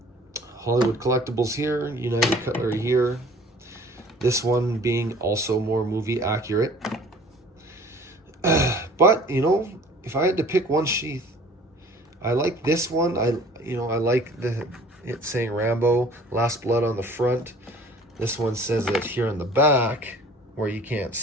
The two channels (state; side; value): normal; both; correlation 0.49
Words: Hollywood Collectables here, United Cutlery here. This one being also more movie accurate. But, if I had to pick one sheath, I like this one. I like it saying Rambo, Last Blood on the front. This one says it here in the back where you can't